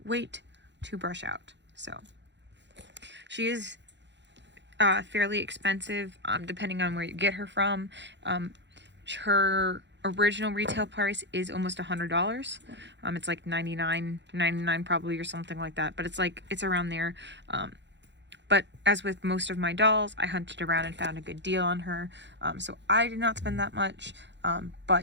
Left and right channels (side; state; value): left; late; 0.52 ms